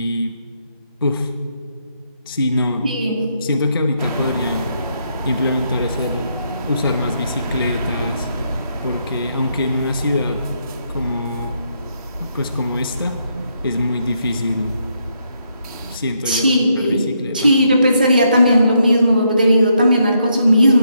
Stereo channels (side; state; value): both; inverted; correlation -0.76